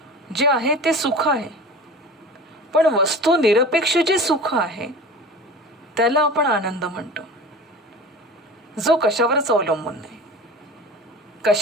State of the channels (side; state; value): both; normal; correlation 0.36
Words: जे आहे ते सुख आहे, पण वस्तू निरपेक्ष जे सुख आहे त्याला आपण आनंद म्हणतो. जो कशावरच अवलंबून नाही,